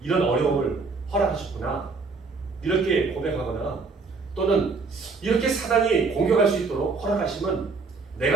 어려움을 허락하셨구나. 이렇게 고백하거나 또는 이렇게 사단이 공격할 수 있도록 허락하시면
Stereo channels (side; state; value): left; quieter; 4.3 dB